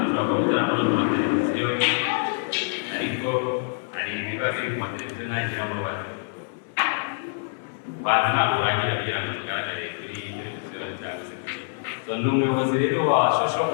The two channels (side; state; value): right; silent; 61 dB below the other